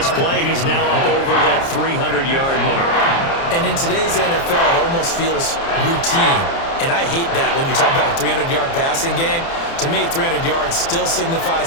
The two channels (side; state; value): right; late; 30 ms